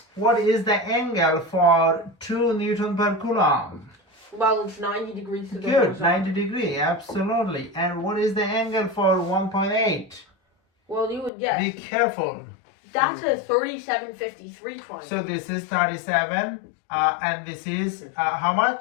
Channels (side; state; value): right; drops out; at 11.3 s